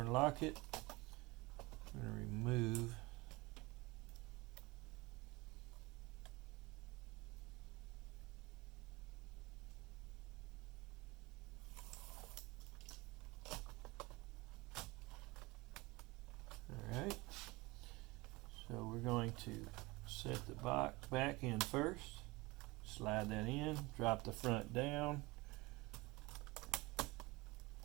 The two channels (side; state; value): left; quieter; 23.2 dB